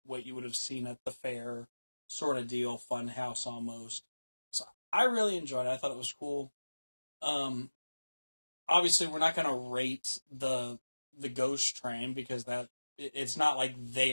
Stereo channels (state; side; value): inverted; both; correlation -1.00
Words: what you would have seen at the fair sort of deal, fun house almost. So I really enjoyed it. I thought it was cool. Obviously we're not going to rate the ghost train because it's not like